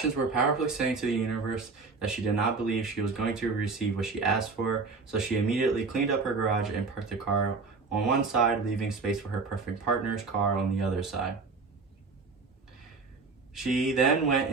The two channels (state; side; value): quieter; left; 4.4 dB